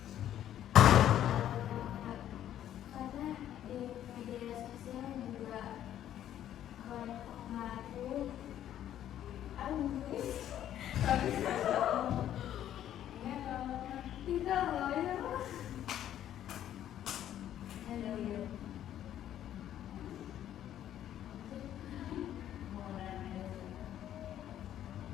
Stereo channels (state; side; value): quieter; right; 11.3 dB